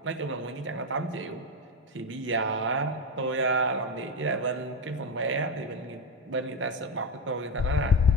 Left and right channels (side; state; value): both; normal; correlation 0.14